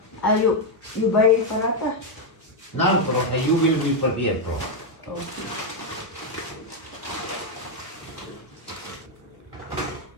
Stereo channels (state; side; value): normal; both; correlation 0.03